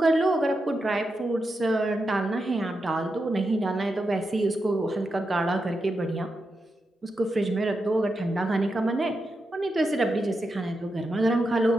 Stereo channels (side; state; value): both; normal; correlation 0.87